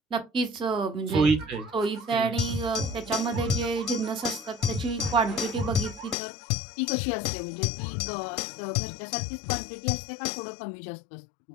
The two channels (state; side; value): drops out; right; at 6.2 s